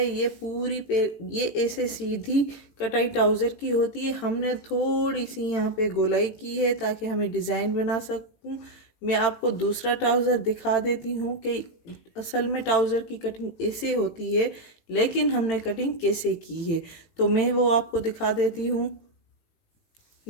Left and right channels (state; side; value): late; right; 18 ms